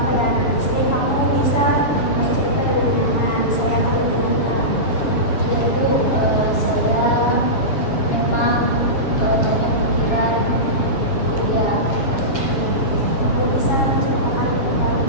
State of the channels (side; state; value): right; late; 7.2 ms